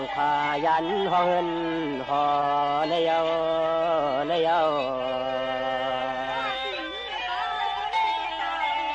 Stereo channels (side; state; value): both; identical; correlation 1.00